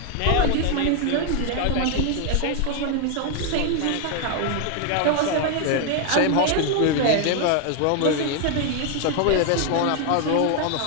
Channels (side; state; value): both; different; correlation 0.01